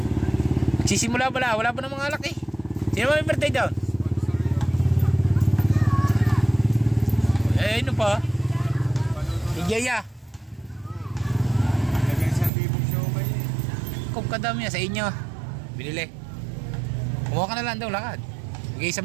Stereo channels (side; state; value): left; drops out; at 12.5 s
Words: Sisimula pala, wala pa ng mga alak eh. Sino ba may birthday down? Eh, ano pa? Igaya. Nagay 1,000 show kayo eh. Kung kadami yan sa inyo. Binili. Kumuha ka na lang daw, lakad. Magay